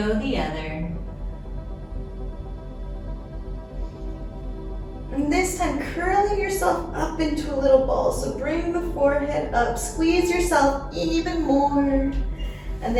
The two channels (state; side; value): identical; both; correlation 1.00